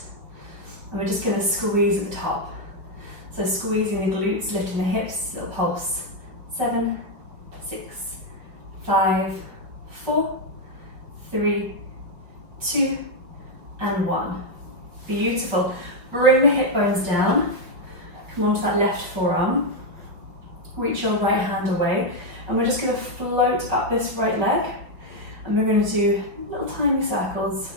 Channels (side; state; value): left; late; 5.3 ms